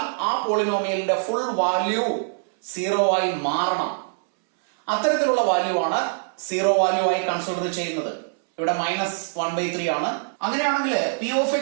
ആ പോളിനോമിയലിന്റെ ഫുൾ വാല്യൂ സീറോ ആയി മാറണം. അത്തരത്തിലുള്ള വാല്യൂ ആണ് സീറോ വാല്യൂ ആയി കൺസിഡർ ചെയ്യുന്നത്. ഇവിടെ -1/3 ആണ്. അങ്ങനെയാണെങ്കിൽ പി ഓഫ്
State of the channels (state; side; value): silent; left; 63 dB below the other